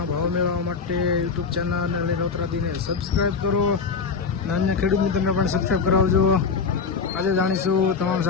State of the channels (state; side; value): quieter; right; 5.3 dB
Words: ભાવ મેળવવા માટે યુટ્યુબ ચેનલ નીલોત્રાથીને સબસ્ક્રાઈબ કરો અને અન્ય ખેડૂત મિત્રોને પણ સબસ્ક્રાઈબ કરાવજો। આજે જાણીશું તમામ